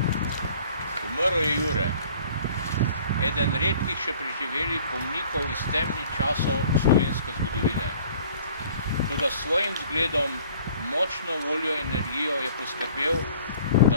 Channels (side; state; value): both; inverted; correlation -0.53